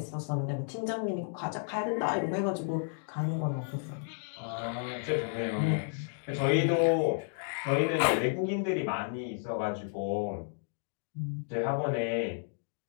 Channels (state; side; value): silent; right; digital silence